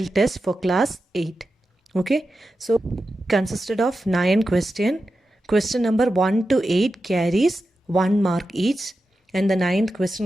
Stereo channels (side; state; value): both; normal; correlation 0.91